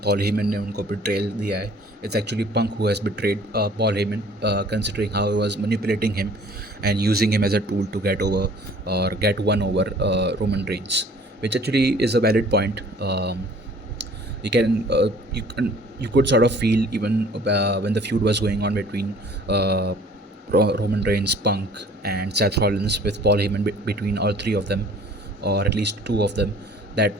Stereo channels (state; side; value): normal; both; correlation 0.52